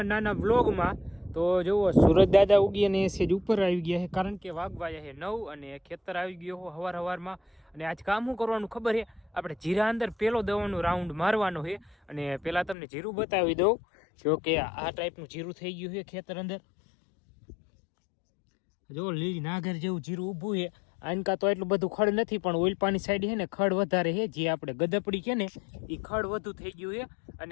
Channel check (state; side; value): drops out; right; at 12.8 s